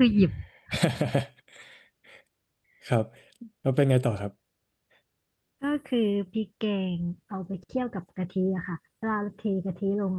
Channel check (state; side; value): identical; both; correlation 1.00